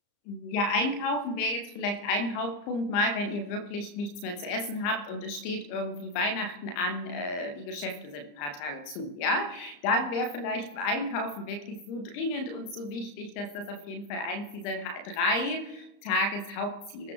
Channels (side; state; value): right; late; 34 ms